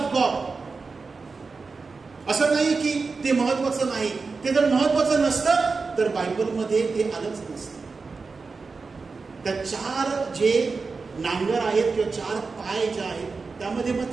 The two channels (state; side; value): quieter; left; 4.4 dB